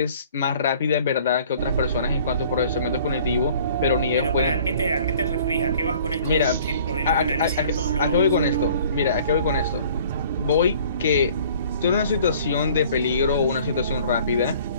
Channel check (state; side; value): inverted; both; correlation -0.52